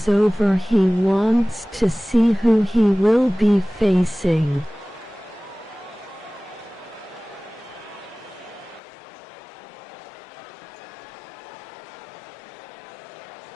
over. He wants to see who he will be facing.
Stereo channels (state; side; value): drops out; right; at 8.8 s